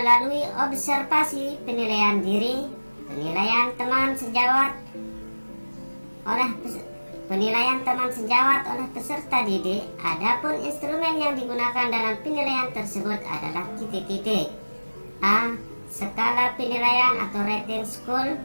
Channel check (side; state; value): both; inverted; correlation -1.00